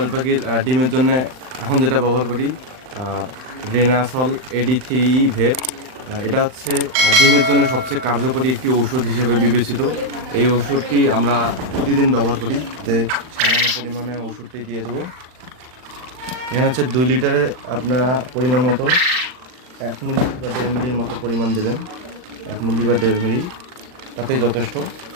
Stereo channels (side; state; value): left; late; 39 ms